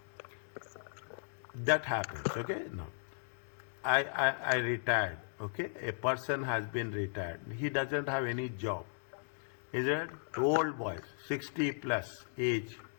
That happens, okay? No. I retired, okay? A person has been retired. He doesn't have any job. Is it? Old boys, 60 plus age.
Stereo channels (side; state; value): right; silent; digital silence